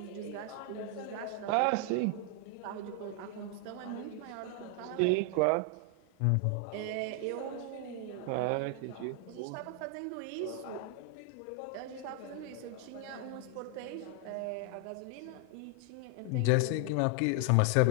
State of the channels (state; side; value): different; both; correlation 0.00